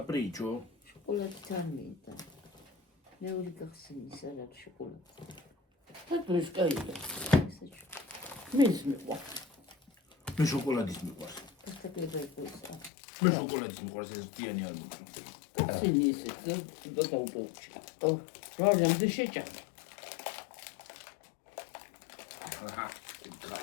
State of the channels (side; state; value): right; drops out; at 12.9 s